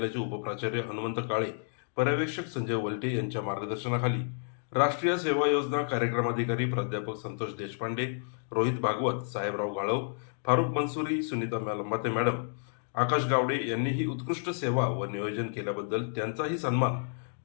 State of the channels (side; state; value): right; silent; digital silence